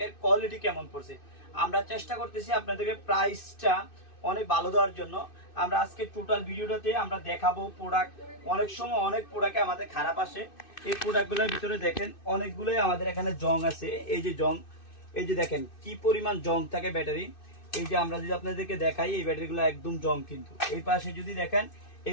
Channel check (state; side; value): late; right; 2.6 ms